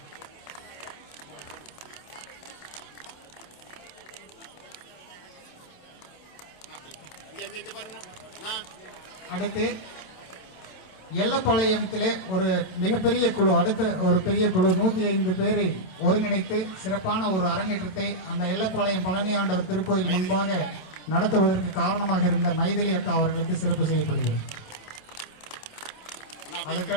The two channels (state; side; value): late; right; 27 ms